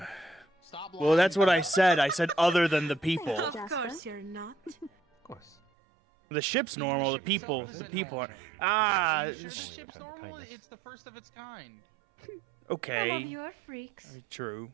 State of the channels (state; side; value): drops out; left; at 5.6 s